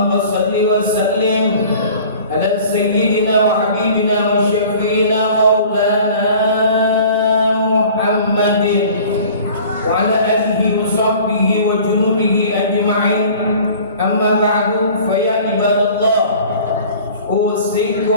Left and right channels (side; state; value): both; inverted; correlation -0.47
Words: salli wa sallim ala sayyidina wa habibina wa syafi'ina maulana Muhammadin wa ala alihi wa sahbihi wa junubihi ajma'in. Amma ba'du, fa ya ibadallah,